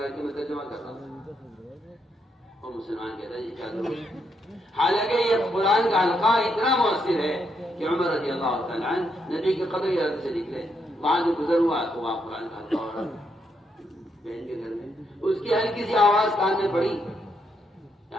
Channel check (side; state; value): both; normal; correlation 0.78